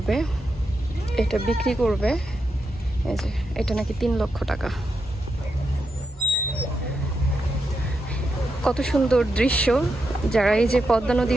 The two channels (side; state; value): both; normal; correlation 0.85